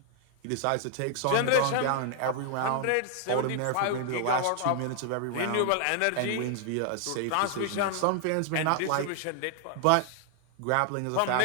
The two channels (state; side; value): different; both; correlation 0.00